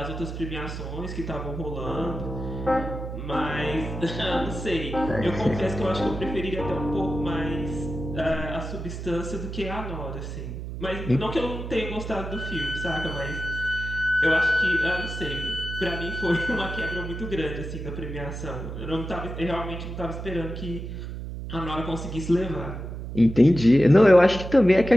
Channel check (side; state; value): right; noise; hum, 7 dB below the sound